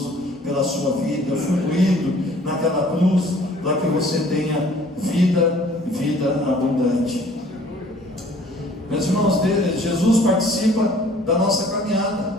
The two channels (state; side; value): normal; both; correlation 0.54